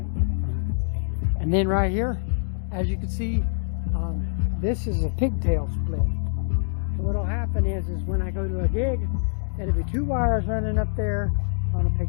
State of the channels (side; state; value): right; silent; digital silence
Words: And then right here, as you can see, this is a pigtail split. So what'll happen is when I go to a gig, it'll be two wires running up there on a